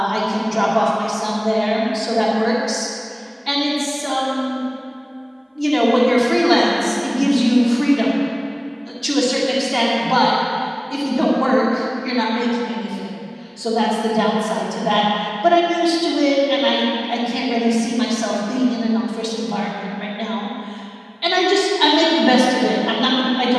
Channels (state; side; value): identical; both; correlation 1.00